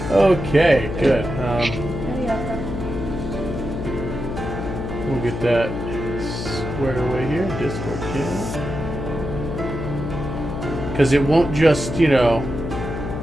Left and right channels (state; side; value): noise; left; hum, 5 dB below the sound